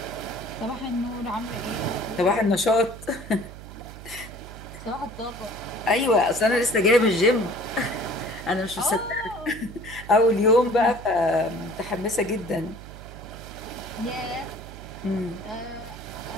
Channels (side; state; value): right; noise; hum, 14 dB below the sound